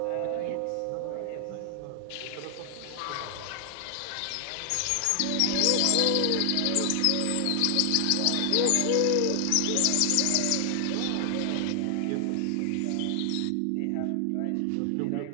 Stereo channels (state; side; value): different; both; correlation 0.00